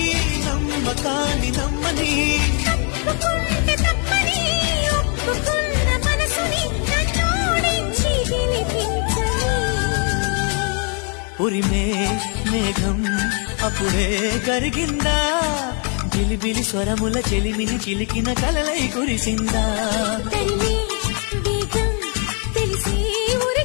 నమ్మకాన్ని నమ్మని ఉరిమే మేఘం అప్పుడే కరిగిందా జిలిబిలి స్వరముల చెలిమిని చిలికిన కలలై కురిసిందా తెలిసి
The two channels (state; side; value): quieter; right; 38.8 dB